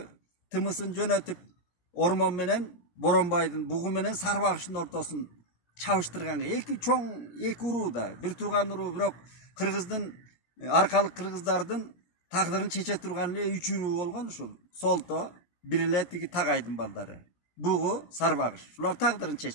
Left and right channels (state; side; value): late; right; 17 ms